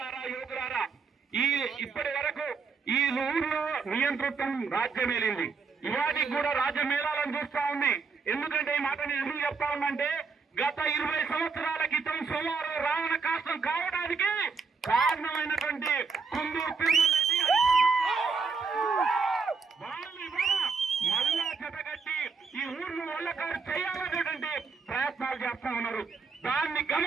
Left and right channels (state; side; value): quieter; left; 5.0 dB